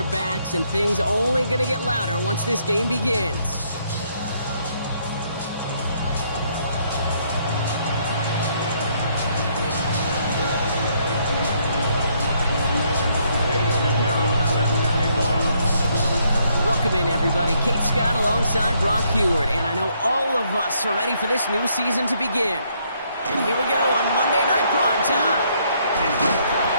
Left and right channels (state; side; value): inverted; both; correlation -0.71